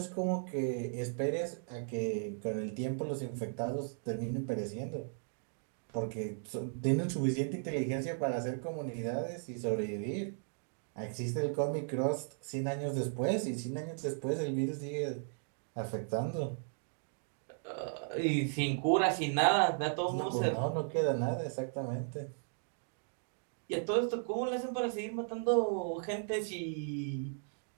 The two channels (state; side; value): silent; left; digital silence